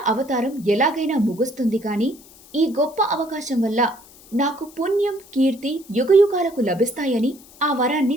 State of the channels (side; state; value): left; noise; hiss, 23 dB below the sound